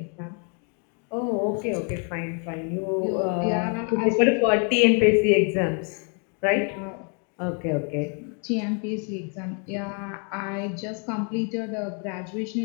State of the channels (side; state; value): right; quieter; 39.2 dB